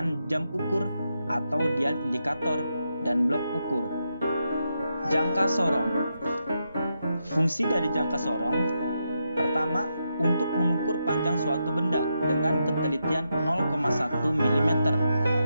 jam ukur atau dial indikator dan blok ukur. Jangka sorong. Fungsi dari jangka sorong: pertama, untuk mengukur panjang suatu benda dengan ketelitian 0,1 mm.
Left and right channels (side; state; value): both; inverted; correlation -0.84